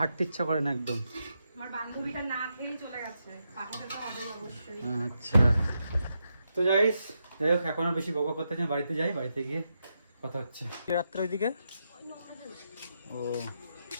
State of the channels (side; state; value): both; inverted; correlation -0.84